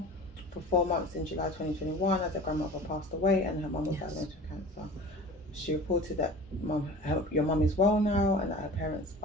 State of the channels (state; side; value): normal; both; correlation 0.39